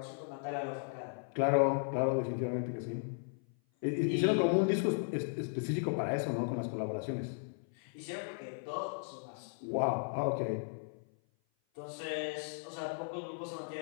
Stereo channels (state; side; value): silent; right; 54 dB below the other